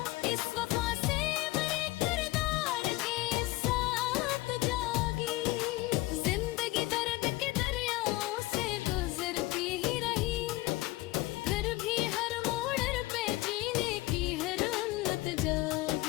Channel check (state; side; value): quieter; right; 19.9 dB